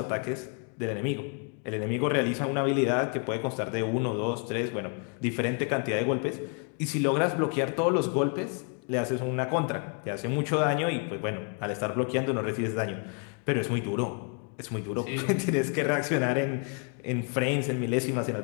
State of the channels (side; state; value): right; quieter; 39.4 dB